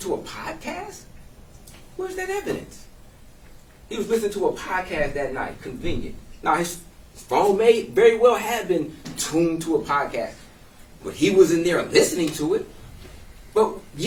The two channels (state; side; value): identical; both; correlation 1.00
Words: a podcast? Where's that evidence? He was listening to a podcast that night. Convenient. Now, his phone may very well have been tuned to a podcast, but he was in there listening to it. But